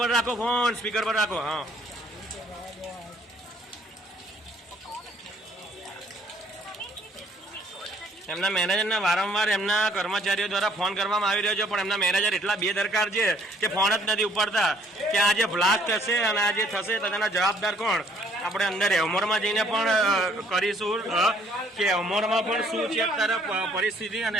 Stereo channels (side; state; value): both; normal; correlation 0.62